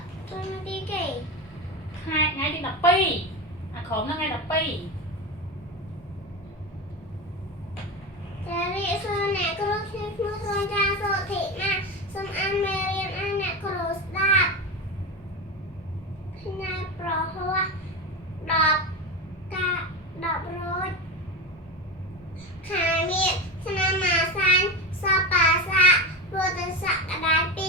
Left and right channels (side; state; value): both; normal; correlation 0.21